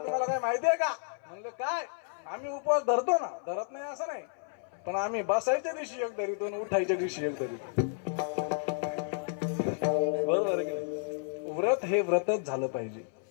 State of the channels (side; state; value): right; silent; 57 dB below the other